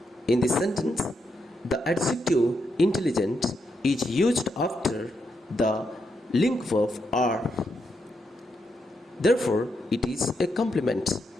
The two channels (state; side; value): normal; both; correlation 0.81